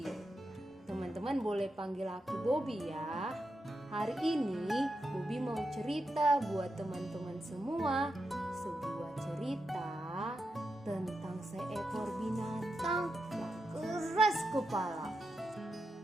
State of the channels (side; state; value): both; normal; correlation 0.87